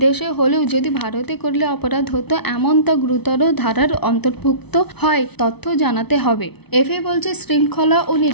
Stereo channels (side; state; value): right; late; 0.99 ms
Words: হলেও যদি ভারতে করলে অপরাধ হতো এমন তা গুরুতর ধারার অন্তর্ভুক্ত হয় তথ্য জানাতে হবে। এফএ বলছে শৃঙ্খলা ও